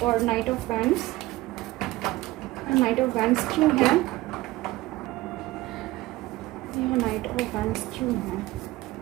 night of wands. Night of wands क्यों है, यहाँ नाइट ऑफ वैंड्स क्यों है,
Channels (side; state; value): left; quieter; 18.3 dB